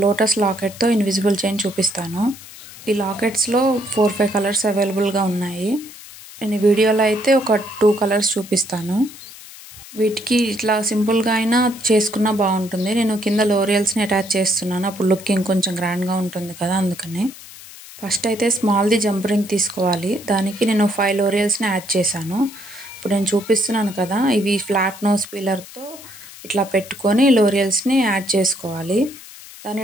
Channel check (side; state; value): left; noise; hiss, 17 dB below the sound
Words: lotus లాకెట్తో invisible chain చూపిస్తాను. ఈ లాకెట్స్లో 4-5 కలర్స్ అవైలబుల్గా ఉన్నాయి. నేను ఈ వీడియోలో అయితే ఒక 2 కలర్స్ చూపిస్తాను. వీటికి ఇట్లా సింపుల్గా అయినా చేసుకున్నా బాగుంటుంది. నేను కింద లోరియల్స్ని అటాచ్ చేస్తున్నాను, అప్పుడు లుకింగ్ కొంచెం గ్రాండ్గా ఉంటుంది కదా, అందుకని. ఫస్ట్ అయితే స్మాల్ది జంప్ రింగ్ తీసుకోవాలి. దానికి నేను 5 లోరియల్స్ని యాడ్ చేశాను. ఇప్పుడు నేను చూపిస్తున్నాను కదా, ఇవి ఫ్లాట్ నోస్ పీలర్తో ఇట్లా పెట్టుకొని లోరియల్స్ని యాడ్ చేసుకోవాలి.